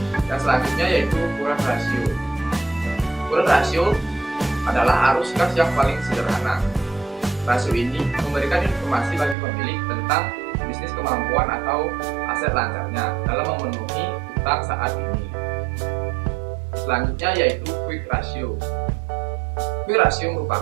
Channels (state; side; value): drops out; left; at 9.3 s